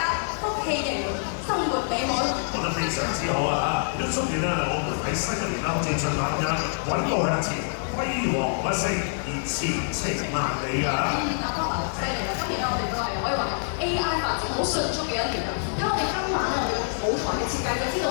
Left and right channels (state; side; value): silent; right; 61 dB below the other